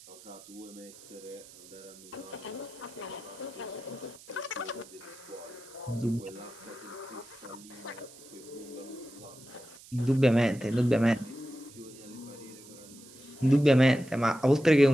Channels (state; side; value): noise; right; hiss, 20 dB below the sound